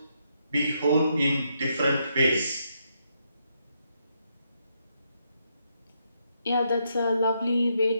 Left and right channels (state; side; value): inverted; both; correlation -0.78